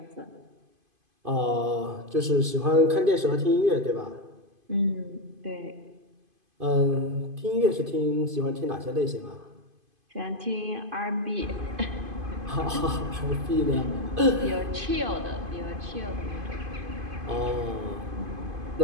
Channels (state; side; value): late; left; 2.5 ms